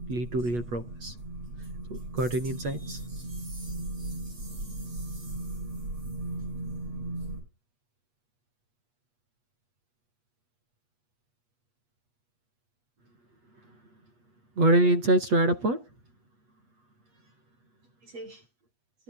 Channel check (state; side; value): late; left; 8.3 ms